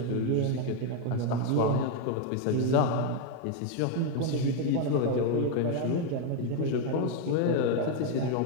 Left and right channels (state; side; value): different; both; correlation 0.01